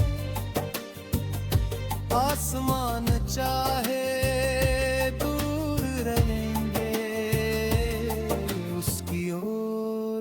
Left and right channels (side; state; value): both; identical; correlation 1.00